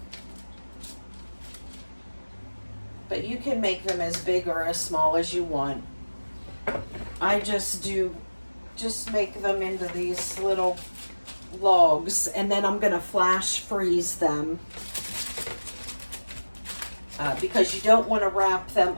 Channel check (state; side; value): inverted; both; correlation -1.00